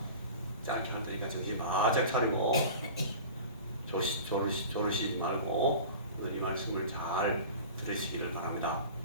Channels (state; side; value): inverted; both; correlation -0.37